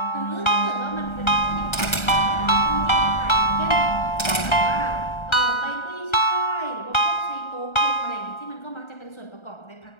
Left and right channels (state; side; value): late; right; 1.3 ms